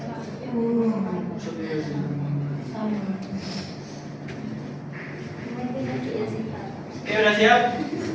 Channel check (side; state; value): both; identical; correlation 1.00